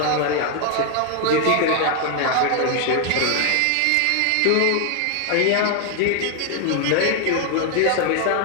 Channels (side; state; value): both; different; correlation 0.00